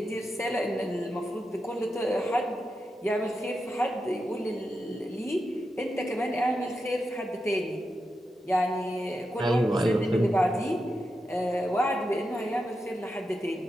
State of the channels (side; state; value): both; normal; correlation 0.88